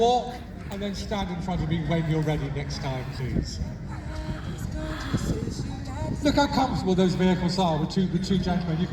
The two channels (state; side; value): identical; both; correlation 1.00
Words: and then stand in front of me when you're ready next time, please. Look how comfortable those vehicles are with two gentlemen. You